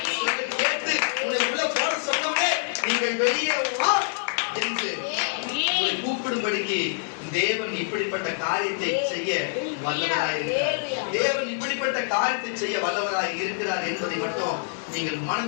கேட்டு உன்னை உள்ள போட சொன்னவனே நீங்கள் வெளியே வா என்று உங்களை கூப்பிடும்படிக்கு தேவன் இப்படிப்பட்ட காரியத்தை செய்ய வல்லவராய் இருக்கிறார். தேவன் இப்படிப்பட்ட காரியத்தை செய்ய வல்லவராய் இருக்கிறார் என்பதை மட்டும் நீங்கள்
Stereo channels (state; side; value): silent; right; digital silence